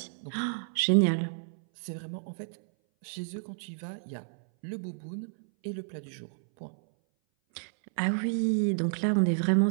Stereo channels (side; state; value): left; silent; 58 dB below the other